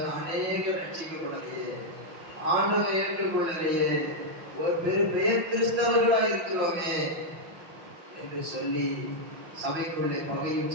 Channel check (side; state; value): left; late; 5.5 ms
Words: அநேக ரட்சிக்கப்படலையே, ஆண்டவரை ஏற்றுக்கொள்ளலையே, ஒரு பெயர் கிறிஸ்தவர்களா இருக்கிறோமே என்று சொல்லி சபைக்குள்ளே பகையும்